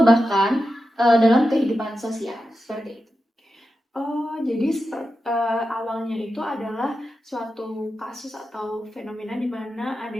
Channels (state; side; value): normal; both; correlation 0.90